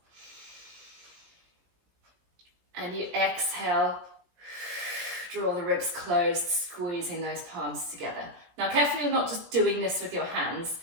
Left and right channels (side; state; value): left; late; 17 ms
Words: And you exhale. Draw the ribs closed, squeezing those palms together. Now, carefully, you're not just doing this with your hands.